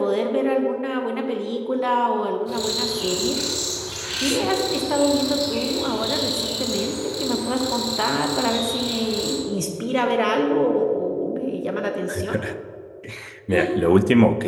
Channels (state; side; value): identical; both; correlation 1.00